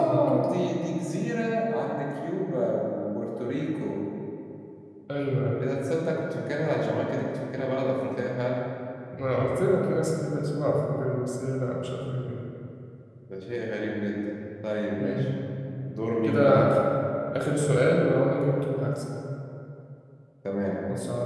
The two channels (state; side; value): identical; both; correlation 1.00